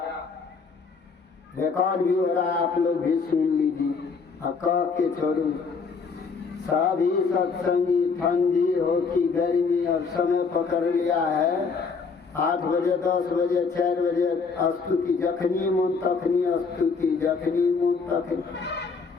रिकॉर्ड भी हो रहा है, आप लोग भी सुन लीजिए। कह के छोड़ू सभी सत्संगी ठंडी हो कि गर्मी अब समय पकड़ लिया है। 8 बजे 10 बजे 4 बजे स्तुति जखनी मन तखनी स्तुति जखनी मन तखनी।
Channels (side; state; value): right; quieter; 5.0 dB